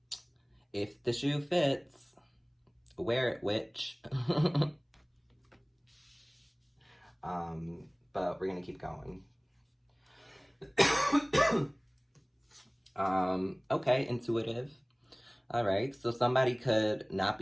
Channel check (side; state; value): both; identical; correlation 1.00